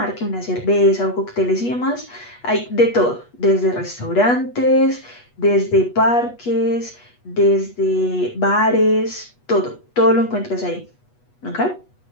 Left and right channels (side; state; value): right; late; 8.2 ms